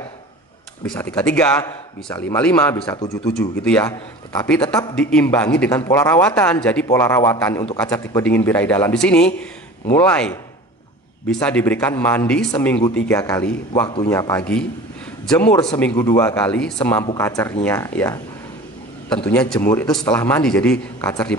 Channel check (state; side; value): normal; both; correlation 0.39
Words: Bisa 33, bisa 55, bisa 77 gitu ya. Tetapi tetap diimbangi dengan pola rawatan. Jadi pola rawatan untuk kaca tipe dingin birahi dalam di sini mulai bisa diberikan mandi seminggu 3 kali, waktunya pagi, jemur seminggu 2 kali semampu kacernya ya. Tentunya jemur itu setelah mandi, jadi kacer